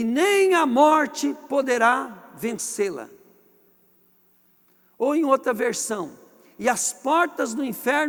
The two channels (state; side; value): identical; both; correlation 1.00